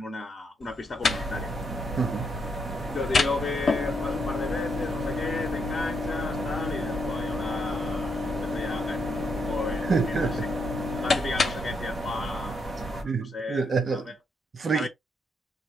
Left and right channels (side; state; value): both; normal; correlation 0.78